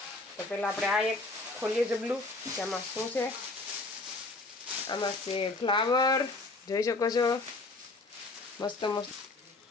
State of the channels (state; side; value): quieter; right; 3.2 dB